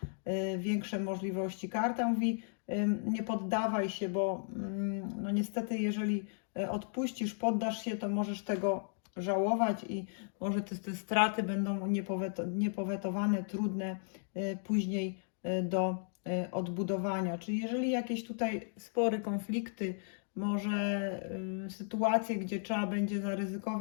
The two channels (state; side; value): silent; right; digital silence